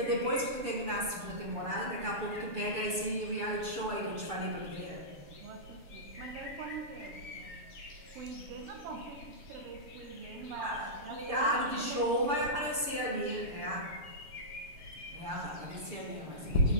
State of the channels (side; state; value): left; late; 6.8 ms